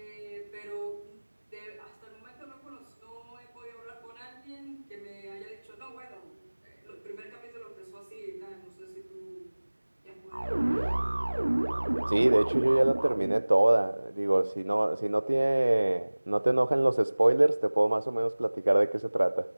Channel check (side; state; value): both; inverted; correlation -1.00